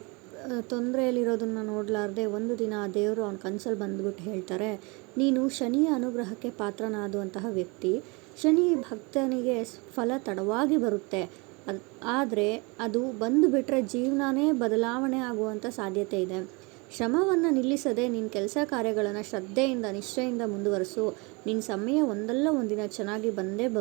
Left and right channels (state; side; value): quieter; left; 28.5 dB